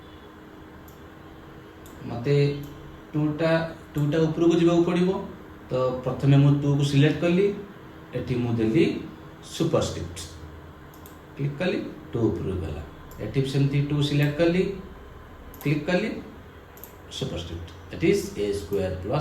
मते टूटा ऊपर को जीवा पड़िबो। तो प्रथमे मु 2 को सिलेक्ट कली, एठी मु देली सुपरस्क्रिप्ट, क्लिक कली 2 ऊपर गला। एठी सेमती 2 सिलेक्ट कली, क्लिक कली superscript, that is a square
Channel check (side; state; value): both; identical; correlation 1.00